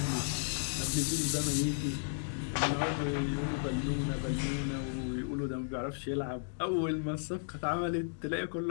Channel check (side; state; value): right; silent; digital silence